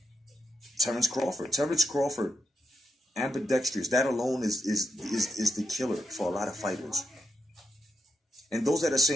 Terrence Crawford. Terrence Crawford, ambidextrous. That alone is the killer for a lot of fighters. And those that are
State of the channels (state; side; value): normal; both; correlation 0.84